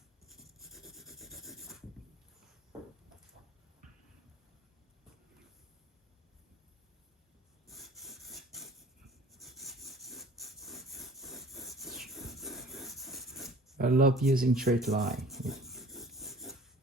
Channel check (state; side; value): normal; both; correlation 0.49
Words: I love using straight line.